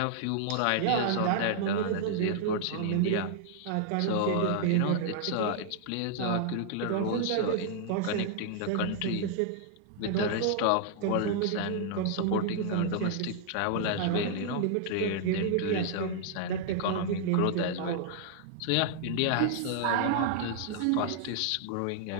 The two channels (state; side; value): different; both; correlation -0.01